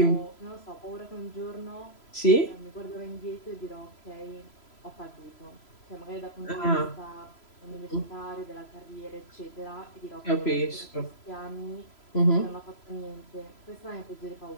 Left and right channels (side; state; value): right; late; 3.0 ms